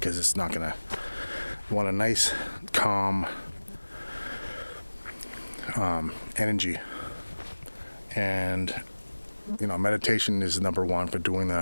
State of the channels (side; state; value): both; inverted; correlation -1.00